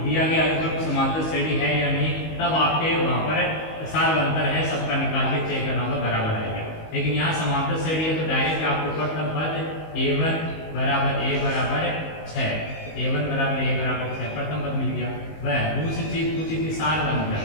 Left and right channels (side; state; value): right; late; 19 ms